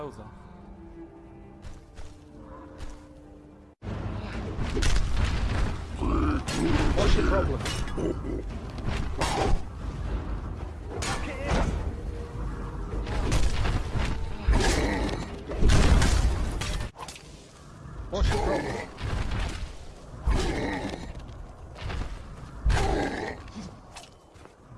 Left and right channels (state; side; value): identical; both; correlation 1.00